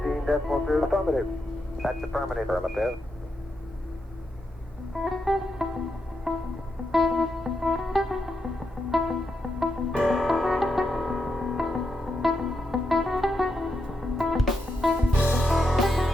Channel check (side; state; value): both; normal; correlation 0.83